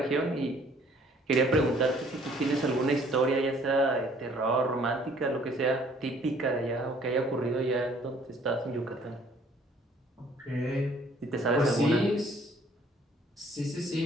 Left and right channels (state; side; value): normal; both; correlation 0.59